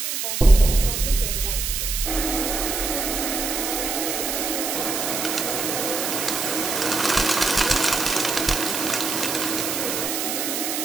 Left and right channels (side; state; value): right; noise; hiss, 2 dB below the sound